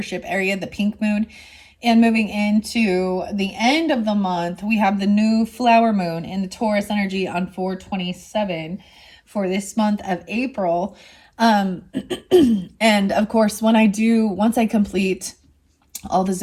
area, the pink moon. And moving into the end of the month, we have the new flower moon in the Taurus energy on 427 for this month of April. And of course, once I complete all the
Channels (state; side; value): identical; both; correlation 1.00